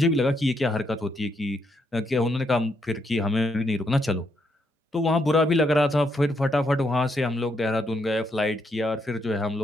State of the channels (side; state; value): both; normal; correlation 0.77